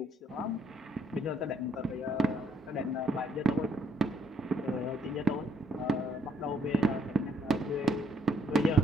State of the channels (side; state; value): both; normal; correlation 0.68